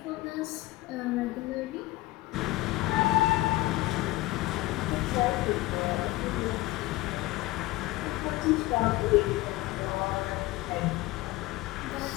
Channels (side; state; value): right; quieter; 18.6 dB